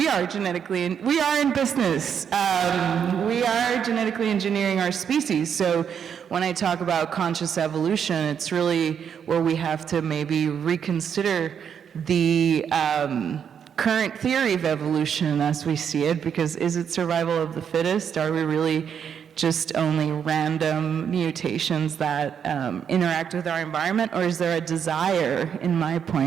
are we are in business. We are genetically engineering our species. So when I talk about conscious evolution, it's really where we have to maybe reconsider the current theory of evolution as we see it, because is it survival of the fittest? Are we really just only random mutations that interact with our environment, or is there a desire? In my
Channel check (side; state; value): left; quieter; 7.8 dB